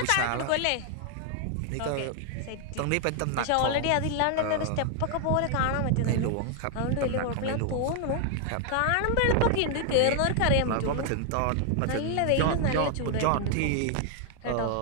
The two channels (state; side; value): different; both; correlation 0.00